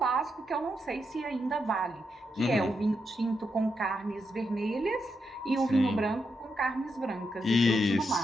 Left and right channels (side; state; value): both; normal; correlation 0.83